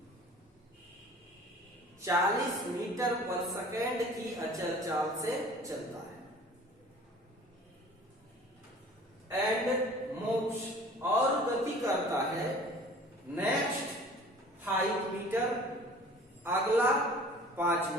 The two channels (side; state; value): both; normal; correlation 0.46